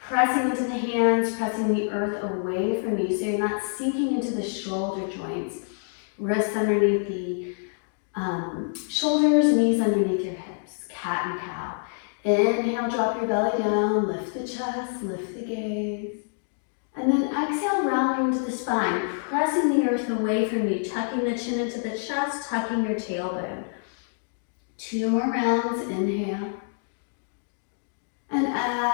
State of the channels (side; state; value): right; silent; digital silence